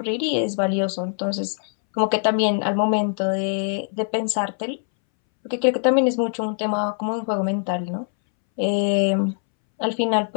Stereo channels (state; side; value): silent; right; 63 dB below the other